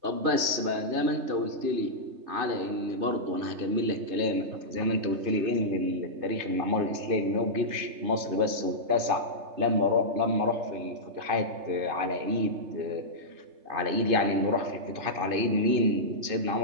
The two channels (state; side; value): late; left; 3.3 ms